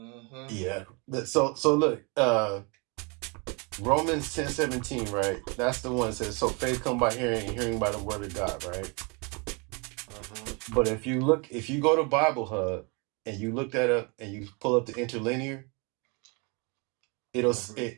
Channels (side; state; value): left; quieter; 31.4 dB